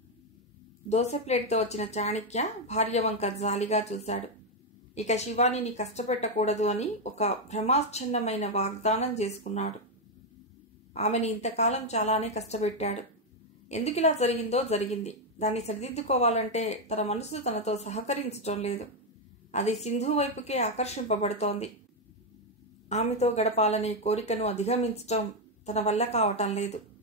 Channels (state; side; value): normal; both; correlation 0.04